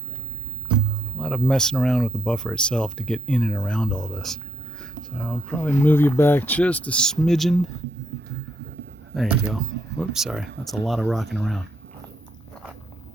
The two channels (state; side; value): normal; both; correlation 0.76